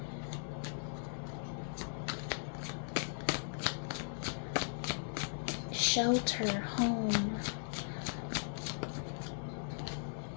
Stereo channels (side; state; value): right; silent; digital silence